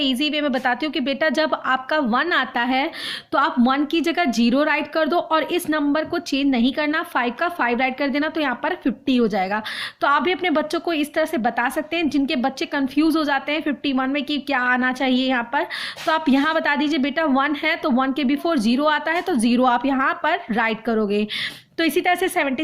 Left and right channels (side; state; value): both; identical; correlation 1.00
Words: वे में बताती हूँ कि बेटा जब आपका 1 आता है तो आप 1 की जगह 0 राइट कर दो, और इस नंबर को चेंज नहीं करना, 5 का 5 राइट कर देना, तो यहाँ पर 50 हो जाएगा। तो आप भी अपने बच्चों को इस तरह से बता सकते हैं। जिनके बच्चे कंफ्यूज हो जाते हैं 51 में कि क्या आना चाहिए यहाँ पर, तो आप यहाँ बता दीजिए बेटा 1 है तो 1 के बिफोर 0 आता है, तो 0 आप यहाँ पर राइट करोगे। तो इसी तरह से